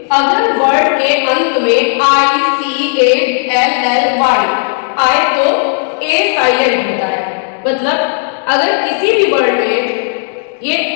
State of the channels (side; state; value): right; silent; 63 dB below the other